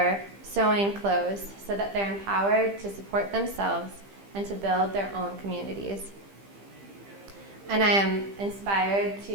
sewing clothes so that they're empowered to support themselves and to build their own communities. And I am inspired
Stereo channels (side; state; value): left; late; 15 ms